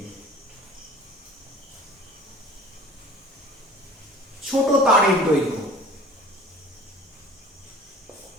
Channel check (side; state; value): both; normal; correlation 0.45